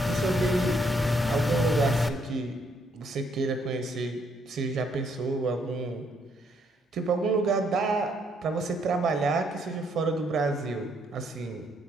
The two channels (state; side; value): normal; both; correlation 0.71